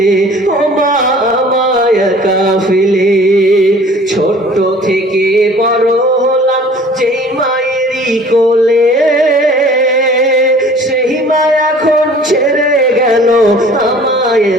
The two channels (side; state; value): both; normal; correlation 0.49